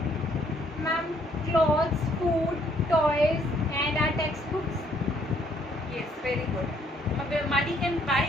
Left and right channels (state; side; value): normal; both; correlation 0.66